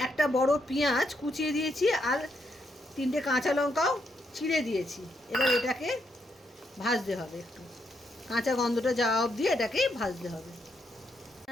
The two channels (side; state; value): both; normal; correlation 0.78